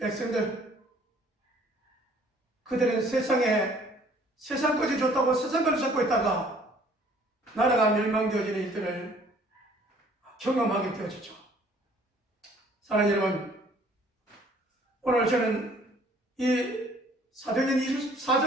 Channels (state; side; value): normal; both; correlation 0.57